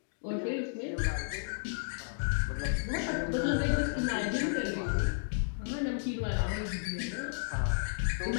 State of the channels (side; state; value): right; silent; digital silence